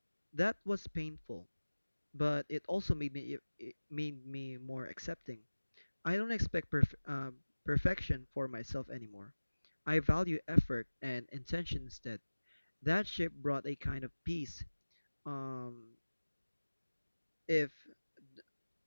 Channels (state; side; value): inverted; both; correlation -1.00